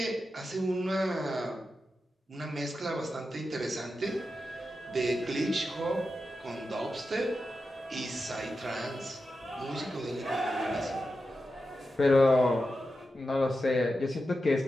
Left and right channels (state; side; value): normal; both; correlation 0.90